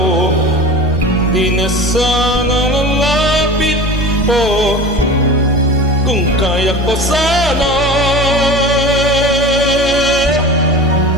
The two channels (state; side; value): normal; both; correlation 0.34